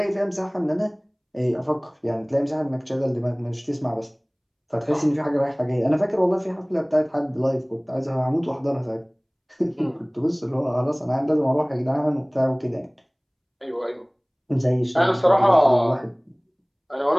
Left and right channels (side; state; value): both; identical; correlation 1.00